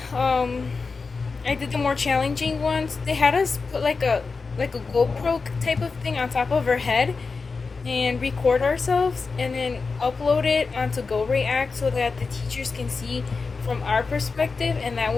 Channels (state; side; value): quieter; right; 4.5 dB